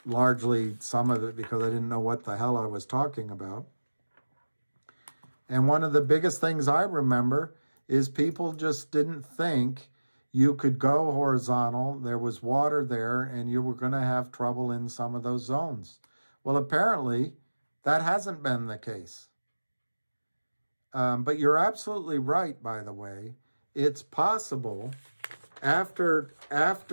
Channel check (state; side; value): inverted; both; correlation -1.00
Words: Largely some of it because I didn't know what the hell I was talking about. And one of the biggest things I remember is people just didn't think you could go horizontal. There was water there and you were going to have trouble in some of those zones. Well, apparently that hasn't been the case. But you're absolutely right, by the way. It's possible after